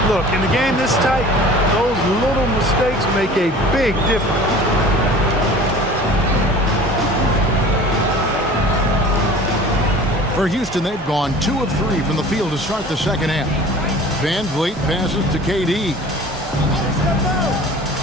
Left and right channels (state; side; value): normal; both; correlation 0.44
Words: Look, in the game this tight, those little mistakes make a big difference. For Houston, they've gone 2 of 3 from the field to start the second half. Van Vliet passes to KD.